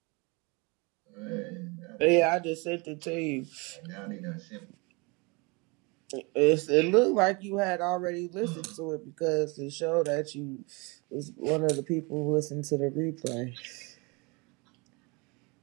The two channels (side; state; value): left; quieter; 28.7 dB